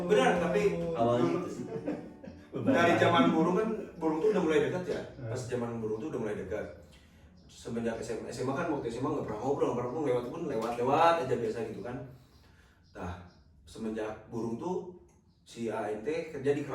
Benar, tapi Awalnya itu sih. dari zaman burung kan, burung tuh udah mulai dekat ya. Pas zaman burung tuh udah mulai dekat. Semenjak SMA kan, waktu SMA nggak pernah ngobrol, lewat pun lewat aja biasa gitu kan. Nah, semenjak burung tuh si ANT kerja di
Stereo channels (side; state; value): both; identical; correlation 1.00